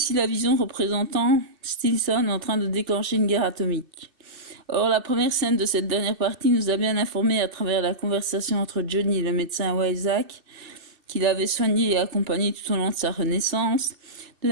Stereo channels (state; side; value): late; left; 2.6 ms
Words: la vision représentant Stilson en train de déclencher une guerre atomique. Or, la première scène de cette dernière partie nous a bien informé à travers la conversation entre Johnny et le médecin Isaac, qu'il avait soigné et accompagné tout au long de sa renaissance, de